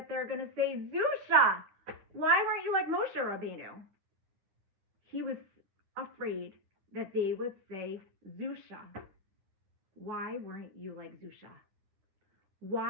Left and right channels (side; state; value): left; late; 10 ms